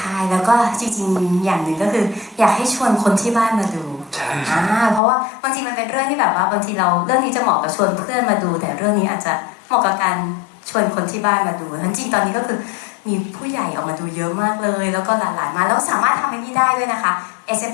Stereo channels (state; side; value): drops out; right; at 5.0 s